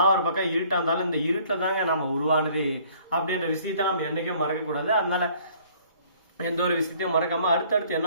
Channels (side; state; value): both; inverted; correlation -0.57